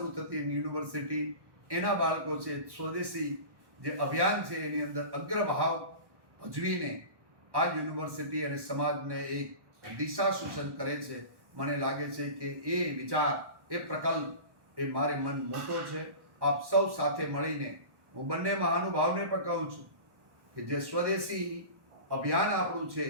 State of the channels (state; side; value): late; left; 1.1 ms